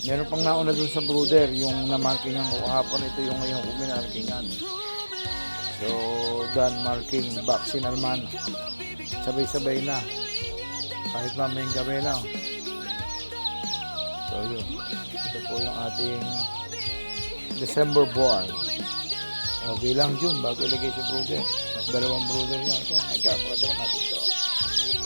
Meron pang nauna dun sa brother, yung namarkingan ko kahapon, ito yung ngayong uminarkingan. So, done marking, vaccine naman. Sabay-sabay na. Kahit mamayang gabi na. So, yun. Ito po yung ating December born. Okay lang June, bago ilagay si brother. Dalawang brother niya. Ika, pakatawa natin ito.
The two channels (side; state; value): both; inverted; correlation -1.00